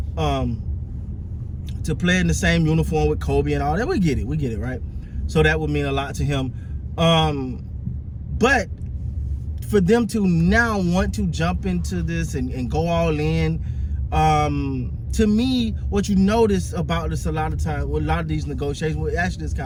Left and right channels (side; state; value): both; identical; correlation 1.00